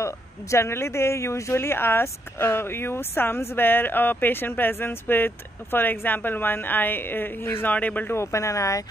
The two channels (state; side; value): normal; both; correlation 0.76